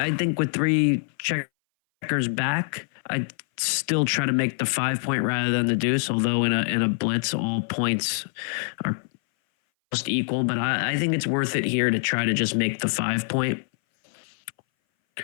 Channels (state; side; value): silent; right; 60 dB below the other